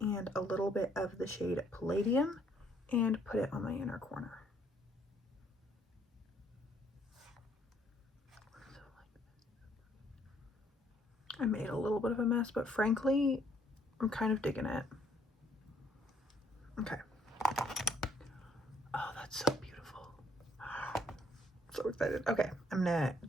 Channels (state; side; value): normal; both; correlation 0.66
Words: a little bit of the shade Palladium and put it on my inner corner. I made a little bit of a mess, but frankly, I'm kind of digging it. Okay. Oh, that's so beautiful. So excited. Okay, I'm gonna